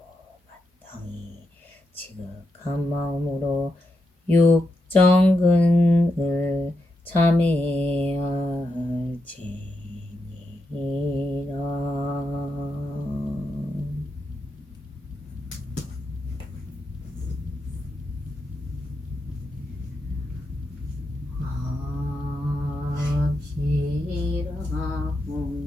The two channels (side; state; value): both; normal; correlation 0.85